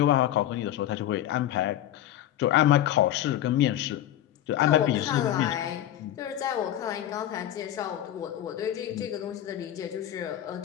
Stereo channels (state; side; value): quieter; right; 12.2 dB